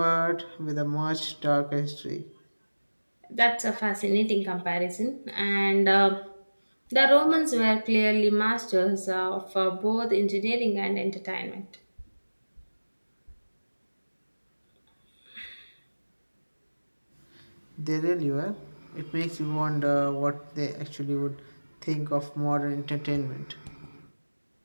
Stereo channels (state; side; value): inverted; both; correlation -1.00